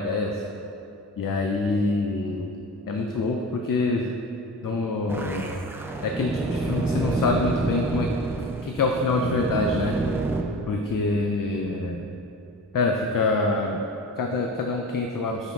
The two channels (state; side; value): normal; both; correlation 0.35